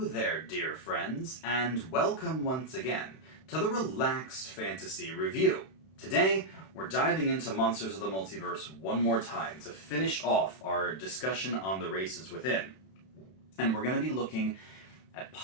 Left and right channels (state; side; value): late; right; 31 ms